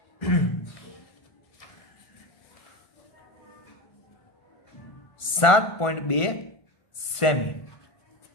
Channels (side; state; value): right; late; 1.5 ms